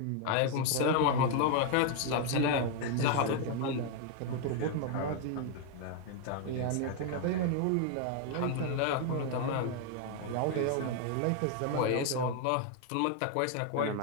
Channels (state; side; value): different; both; correlation 0.00